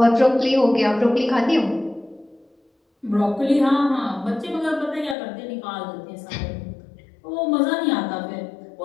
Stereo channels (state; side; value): drops out; right; at 5.2 s